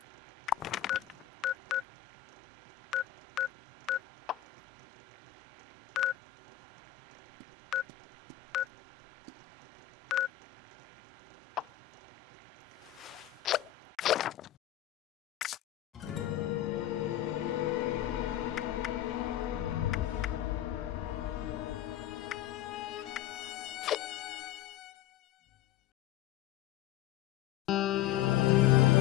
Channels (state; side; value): quieter; right; 13.3 dB